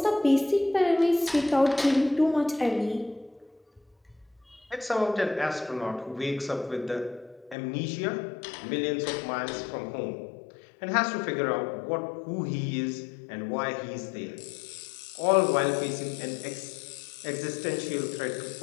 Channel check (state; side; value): drops out; right; at 7.6 s